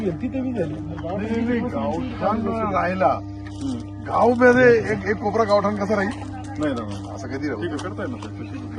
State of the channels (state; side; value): identical; both; correlation 1.00